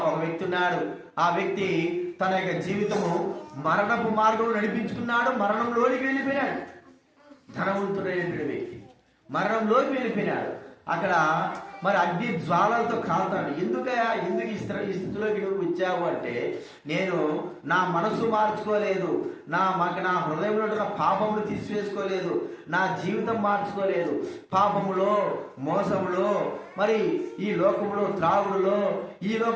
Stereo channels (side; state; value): both; identical; correlation 1.00